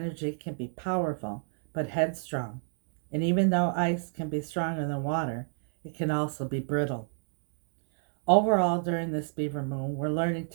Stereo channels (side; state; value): left; silent; digital silence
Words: can be powerful, but headstrong. And even though ice can be stronger than water, it can also be brittle. Overall, during this beaver moon, we're learning